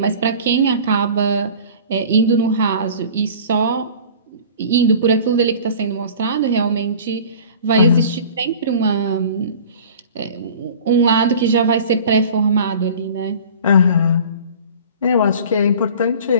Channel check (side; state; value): both; inverted; correlation -0.42